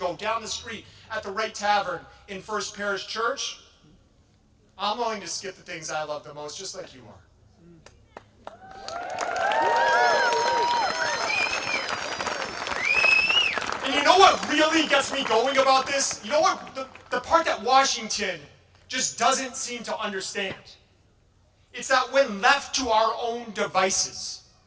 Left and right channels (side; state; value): both; identical; correlation 1.00